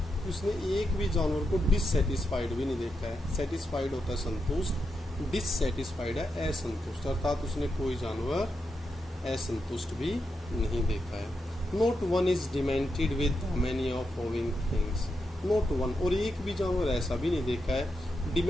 उसने एक भी जानवर को डिससेटिस्फाइड भी नहीं देखा है। सेटिस्फाइड होता है संतुष्ट, डिससेटिस्फाइड है असंतुष्ट, अर्थात उसने कोई जानवर असंतुष्ट भी नहीं देखा है। Note one is demented with many of owing things, note one, और एक भी जानवर ऐसा भी नहीं देखा है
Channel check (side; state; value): both; normal; correlation 0.85